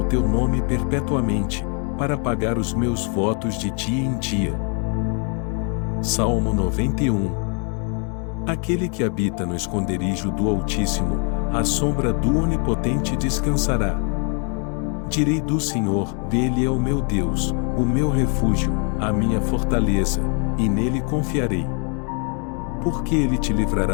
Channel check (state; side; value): quieter; right; 38.7 dB